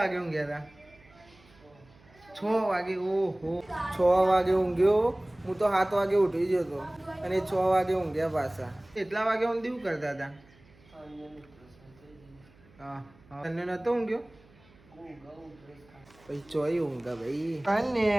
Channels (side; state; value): right; noise; hum, 27 dB below the sound